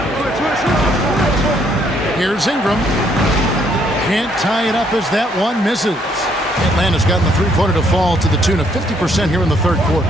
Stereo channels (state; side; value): normal; both; correlation 0.69